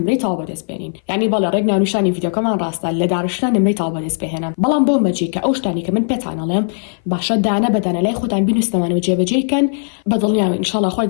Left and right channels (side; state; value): right; silent; 59 dB below the other